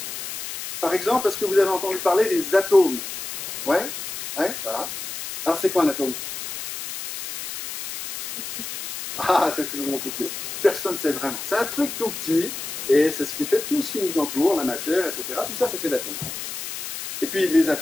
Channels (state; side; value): noise; left; hiss, 7 dB below the sound